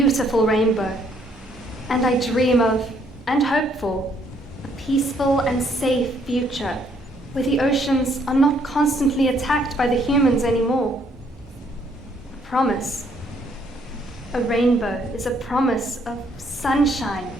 rainbow. And I dream of, and hope for, a peaceful and safe future where the oceans are not constantly attacked by the humans anymore. A promise. A rainbow is a promise of sunshine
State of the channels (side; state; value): both; normal; correlation 0.67